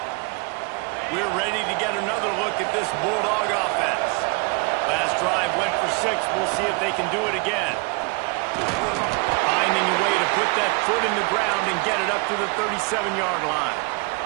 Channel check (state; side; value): quieter; left; 30.0 dB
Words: We're ready to get another look at this Bulldog offense. Last drive went for 6. We'll see if they can do it again. Finding a way to put that foot in the ground and get it up to the 37-yard line.